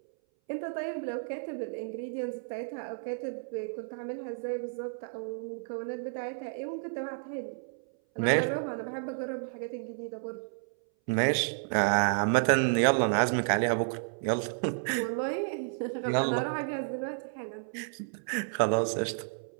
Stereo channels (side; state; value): left; silent; 57 dB below the other